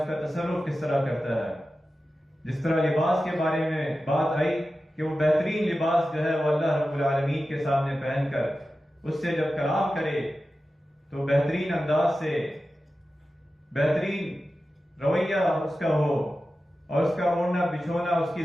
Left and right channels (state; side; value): normal; both; correlation 0.93